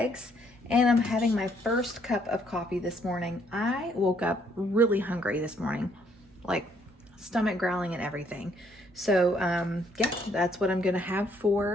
And I'm having my first cup of coffee this morning. I woke up really hungry this morning, like stomach growling and everything. So yeah, that's what I'm gonna have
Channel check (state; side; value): normal; both; correlation 0.68